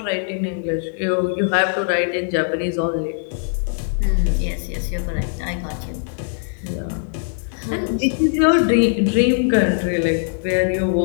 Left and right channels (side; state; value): right; silent; digital silence